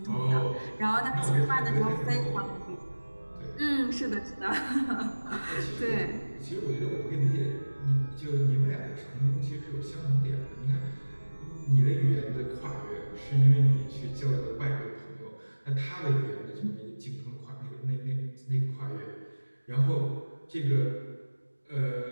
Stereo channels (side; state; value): both; inverted; correlation -1.00